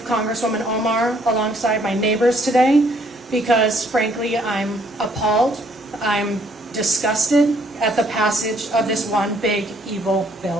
Congresswoman Omar, alongside my neighbors today because, frankly, I'm appalled, I'm disgusted at the passage of this one big, evil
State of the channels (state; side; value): normal; both; correlation 0.65